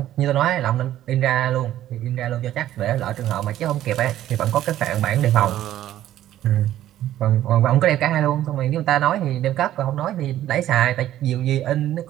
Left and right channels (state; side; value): quieter; left; 12.8 dB